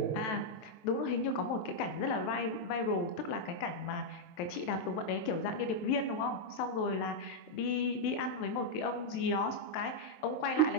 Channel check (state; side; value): late; right; 23 ms